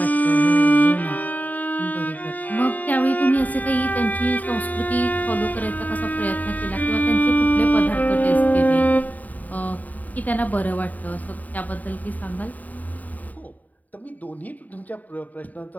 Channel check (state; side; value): late; right; 0.078 ms